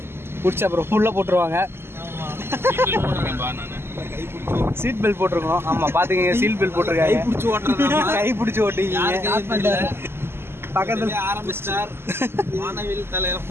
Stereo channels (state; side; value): late; left; 0.12 ms